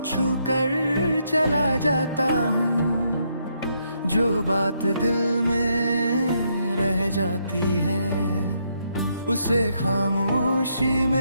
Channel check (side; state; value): both; inverted; correlation -0.76